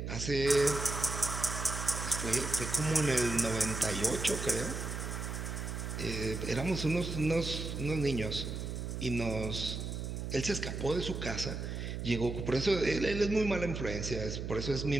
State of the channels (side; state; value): right; noise; hum, 5 dB below the sound